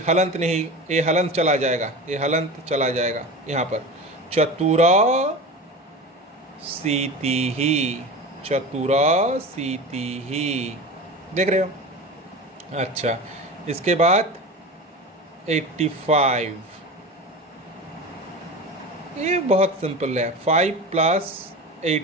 हलंत नहीं, ये हलंत चला जाएगा, ये हलंत चला जाएगा यहाँ पर, चतुरा सीति ही, चतुरा सीति ही। देख रहे हो। अच्छा इसके बाद 85, ये बहुत सिंपल है। 5 प्लस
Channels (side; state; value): both; normal; correlation 0.30